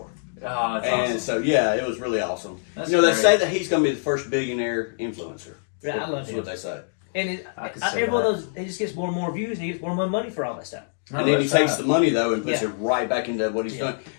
oh, that's And awesome. so, yeah, it was really awesome. That's you know, they great. say that he's going to be the first billionaire influencer. Yeah, I love That's him. what they say. And I could see every one that. of those, he just gets more and more views and he gets more and more money for all that stuff. No, And then he that's takes right. the money, though, and puts Yeah. it right back into what he's doing.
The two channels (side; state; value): right; silent; digital silence